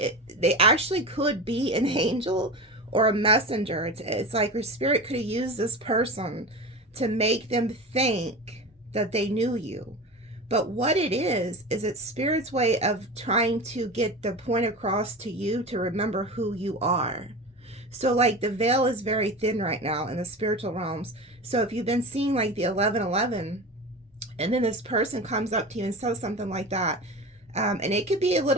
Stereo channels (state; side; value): normal; both; correlation 0.29